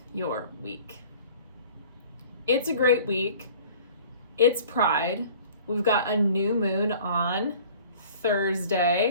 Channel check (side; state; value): both; inverted; correlation -0.48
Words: your week. It's a great week. It's Pride. We've got a new moon on